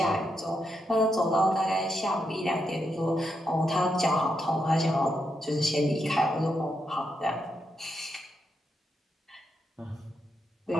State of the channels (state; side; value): normal; both; correlation 0.82